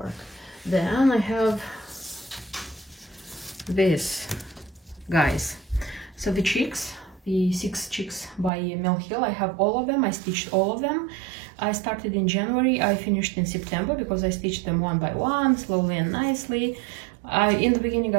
Then I have this, guys. So the chicks, the 6 chicks by Mill Hill, I have all of them. I stitched all of them. I started in January, I finished in September, because I stitched them one by one, slowly and nicely. In the beginning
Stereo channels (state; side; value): drops out; left; at 8.5 s